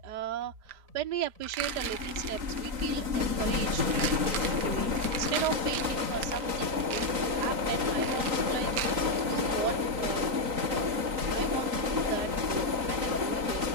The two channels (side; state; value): left; late; 3.9 ms